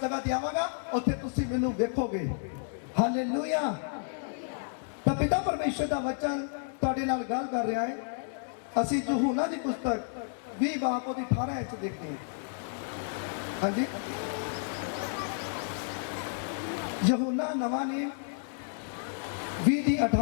ਜਗ੍ਹਾ ਤੇ ਆਵਾਂਗਾ, ਉੱਥੇ ਤੁਸੀਂ ਮੈਨੂੰ ਵੇਖੋਗੇ। ਹਾਲੇਲੂਇਆ। ਤਾਂ ਪਿਤਾ ਪਰਮੇਸ਼ਰ ਦਾ ਵਚਨ ਤੁਹਾਡੇ ਨਾਲ ਗੱਲ ਕਰ ਰਿਹਾ ਹੈ। ਅਸੀਂ ਯਹੂਨਾ ਦੀ ਪੁਸਤਕ 20 ਬਾਬ ਉਹਦੀ 18 ਵਿੱਚ ਦੇਖਦੇ ਹਾਂ। ਹਾਂਜੀ, ਯਹੂਨਾ ਨਵਾਂ ਨੇਮ 20 ਦੀ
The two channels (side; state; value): right; silent; digital silence